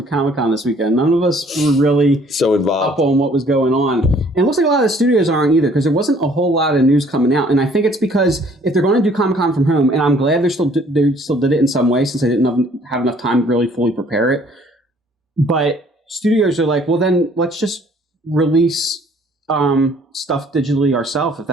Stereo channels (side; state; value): both; normal; correlation 0.59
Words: Comic-Con this weekend. None of us were really so involved up on what was going on. And it looks like a lot of the studios aren't either, because there wasn't a whole lot of news coming out. And I think it's because if they're going to do Comic-Con from home, and I'm glad they still did it in some way, since they didn't have enough time to really fully prepare it. But studios are like, well, then let's just release stuff digitally ourselves if